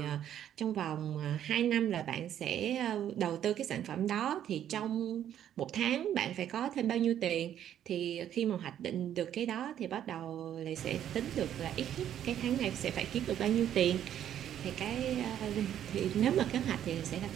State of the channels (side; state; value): left; quieter; 10.5 dB